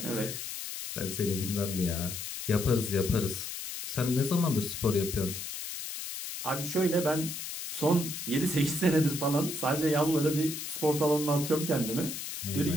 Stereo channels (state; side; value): noise; left; hiss, 7 dB below the sound